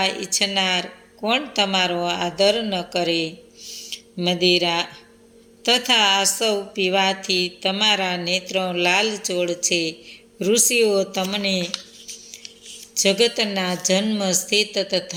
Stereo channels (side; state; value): both; identical; correlation 1.00